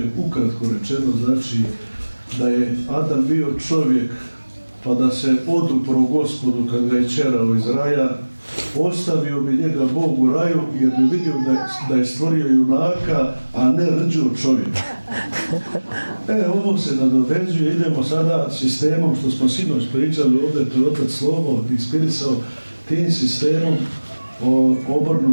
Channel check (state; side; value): inverted; both; correlation -1.00